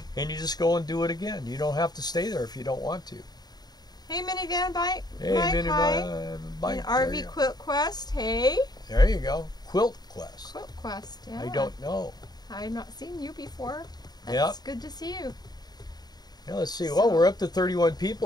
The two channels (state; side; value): late; right; 0.20 ms